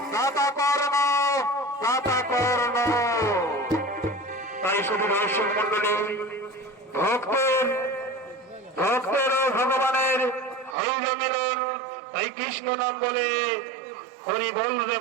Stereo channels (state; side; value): drops out; left; at 10.8 s